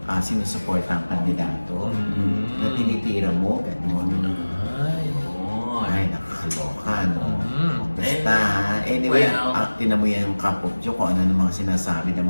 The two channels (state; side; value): inverted; both; correlation -1.00